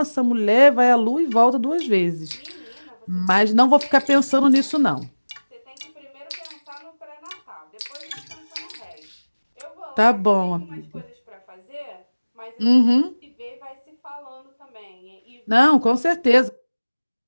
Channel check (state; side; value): inverted; both; correlation -1.00